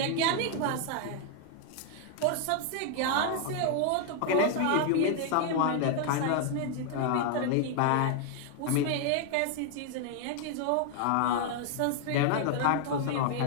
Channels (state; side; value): different; both; correlation 0.00